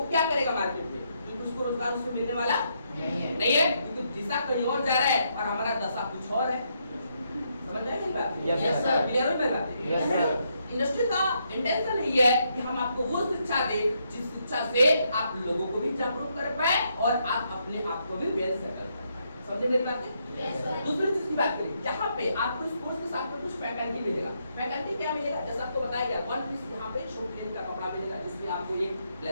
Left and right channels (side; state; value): both; inverted; correlation -0.77